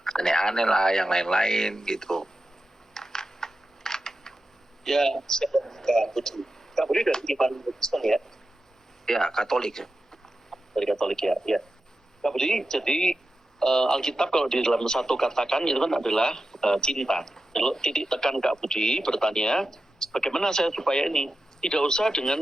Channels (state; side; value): normal; both; correlation 0.91